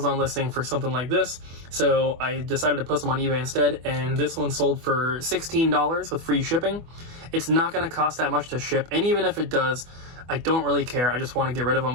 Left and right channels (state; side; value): late; left; 24 ms